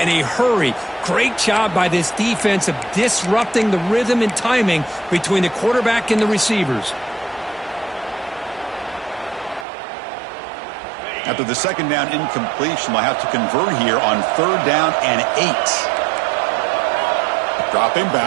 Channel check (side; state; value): left; drops out; at 9.7 s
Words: a hurry. Great job by this defense of disrupting the rhythm and timing between the quarterback and the receivers. After the second down incompletion, they'll have to convert here on third down and 8. Dropping